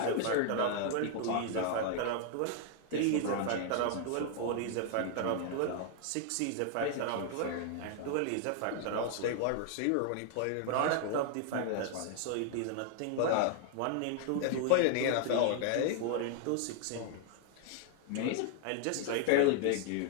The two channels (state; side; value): different; both; correlation 0.00